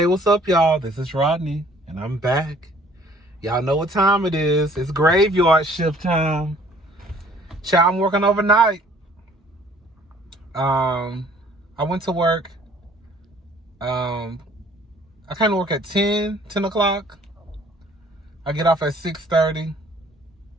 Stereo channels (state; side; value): normal; both; correlation 0.56